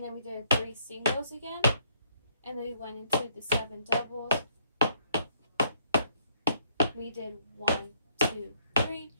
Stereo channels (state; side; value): inverted; both; correlation -0.69